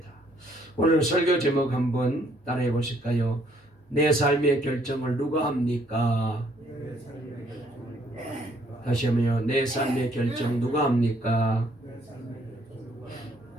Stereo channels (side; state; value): both; normal; correlation 0.66